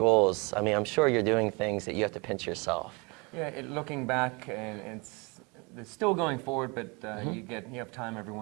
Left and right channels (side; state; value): left; quieter; 29.3 dB